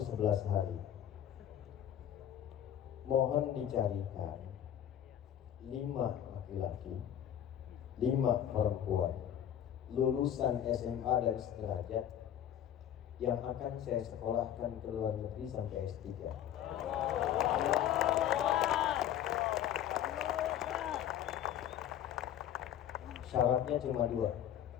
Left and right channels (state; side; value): quieter; right; 10.6 dB